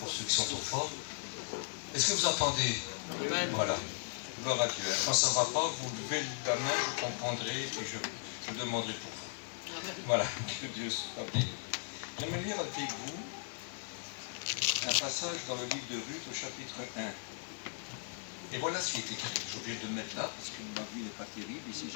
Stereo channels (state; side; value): silent; right; digital silence